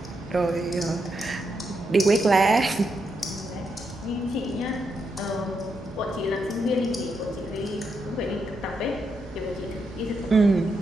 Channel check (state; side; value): normal; both; correlation 0.82